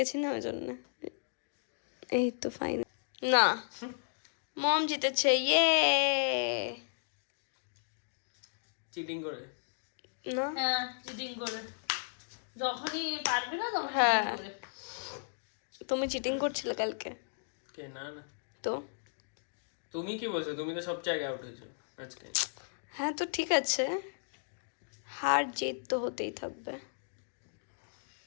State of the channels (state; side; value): silent; right; digital silence